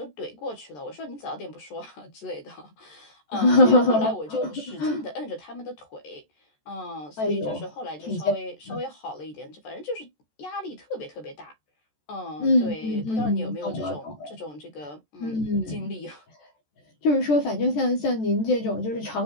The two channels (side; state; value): right; late; 14 ms